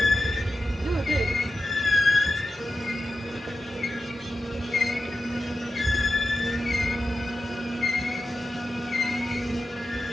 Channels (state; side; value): normal; both; correlation 0.91